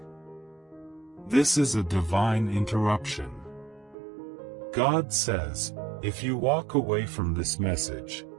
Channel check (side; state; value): left; drops out; at 4.0 s